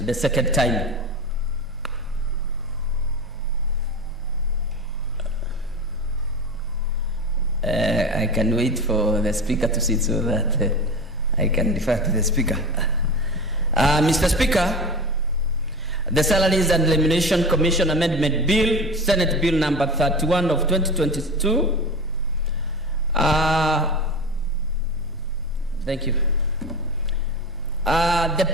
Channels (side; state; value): both; normal; correlation 0.28